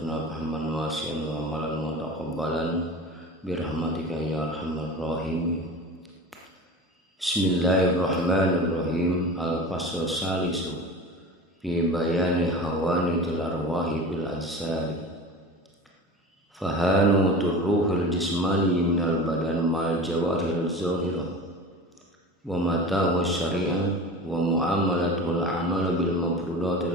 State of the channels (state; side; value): normal; both; correlation 0.34